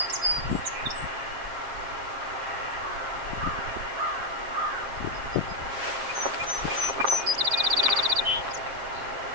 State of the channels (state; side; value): late; left; 7.3 ms